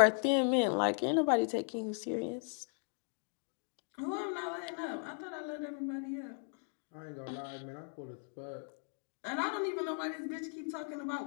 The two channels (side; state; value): right; silent; 53 dB below the other